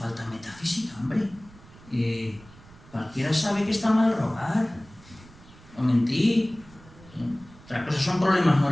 metafísica, hombre. Cualquiera sabe que está mal robar o mentir. Otra cosa son problemas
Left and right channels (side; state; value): right; noise; rumble, 23 dB below the sound